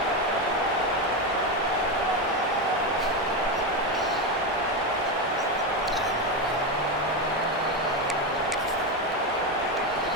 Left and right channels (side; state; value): both; normal; correlation 0.12